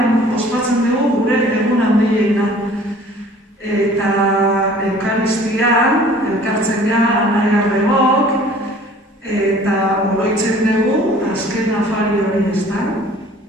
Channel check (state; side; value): normal; both; correlation 0.51